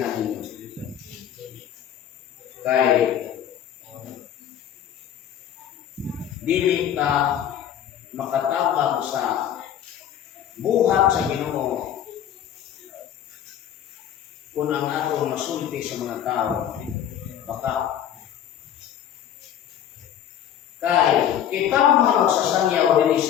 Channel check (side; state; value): right; quieter; 10.1 dB